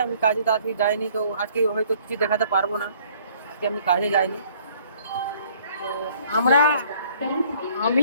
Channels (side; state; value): both; inverted; correlation -0.59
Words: আমি কাজে তো আজকে যাইনি, তো আজকে হয়তো কিছু দেখাতে পারবো না, আজকে আমি কাজে যাইনি। তো আমরা আমি